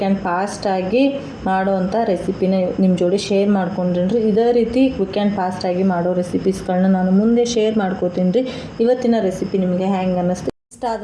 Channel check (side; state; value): both; identical; correlation 1.00